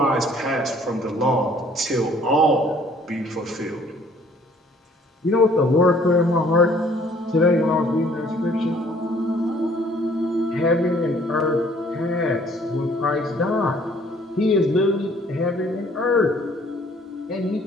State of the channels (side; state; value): both; normal; correlation 0.59